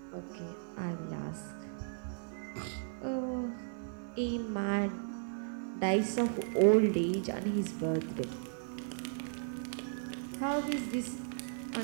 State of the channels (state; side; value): silent; left; 54 dB below the other